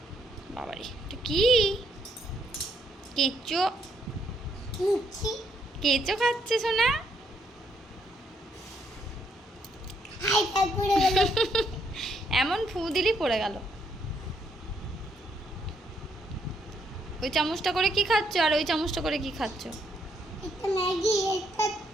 বাবারে এটা কি? কেঁচো কেঁচো খাচ্ছে সোনা? এমন ফু দিলি পড়ে গেল। ওই চামচটা করে কি খাচ্ছ আর ওই চামচটা করে কি খাচ্ছ? এটা ম্যাগি,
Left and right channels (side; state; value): both; normal; correlation 0.73